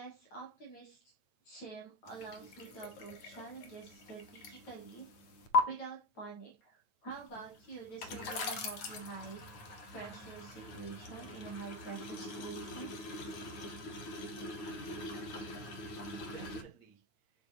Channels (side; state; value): right; late; 8.9 ms